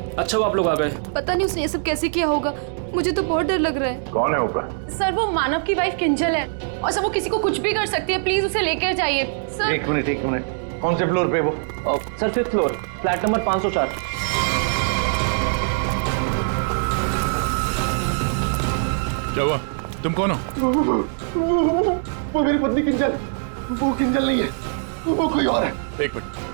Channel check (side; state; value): left; silent; digital silence